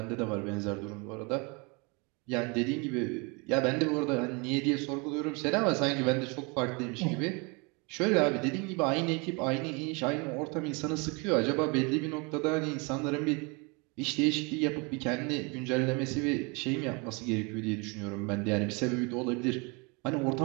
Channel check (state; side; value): quieter; left; 30.2 dB